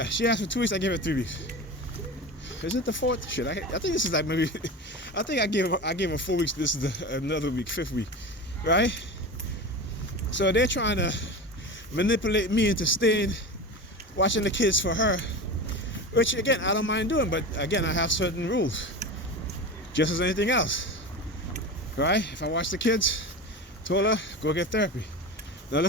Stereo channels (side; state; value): both; normal; correlation 0.28